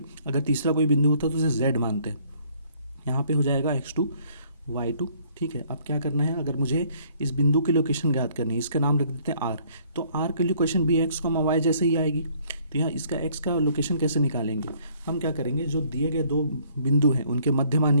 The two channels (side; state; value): both; inverted; correlation -0.62